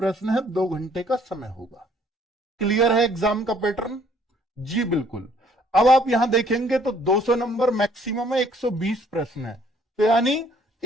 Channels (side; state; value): both; normal; correlation 0.61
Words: है, 2 घंटे का समय होगा। क्लियर है एग्जाम का पैटर्न? जी बिल्कुल। अब आप यहां देखेंगे तो 200 नंबर मैक्सिमम है, 120 प्रश्न है, तो यानी